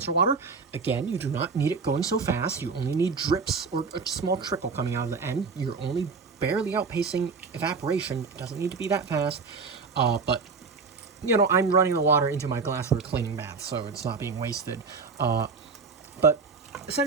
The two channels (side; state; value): left; quieter; 4.8 dB